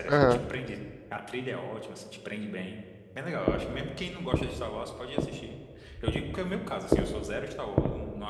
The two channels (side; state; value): both; identical; correlation 1.00